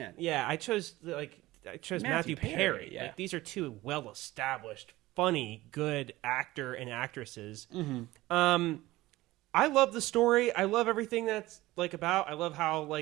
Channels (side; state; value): left; quieter; 18.0 dB